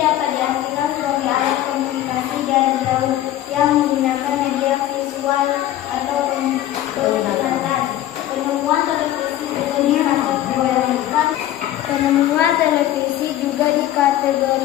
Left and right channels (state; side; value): quieter; right; 13.2 dB